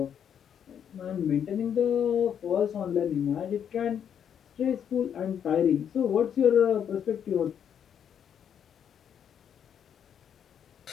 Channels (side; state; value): right; quieter; 8.5 dB